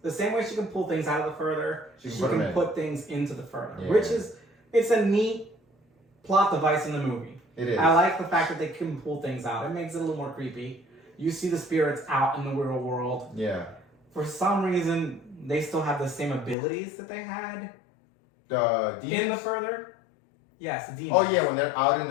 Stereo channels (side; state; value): right; drops out; at 16.6 s